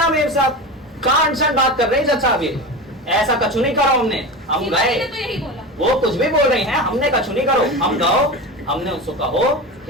मेम साहब, कहाँ अनशन बात कर रहे हैं जज साहब? ये ऐसा कछु नहीं करो हमने। हम सीमा गए, जी ने तो यही बोला। वो कुछ भी बोल रही हैं, हमने कछु नहीं करो। हम गओ, हमने उसको कहो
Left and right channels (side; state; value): both; normal; correlation 0.26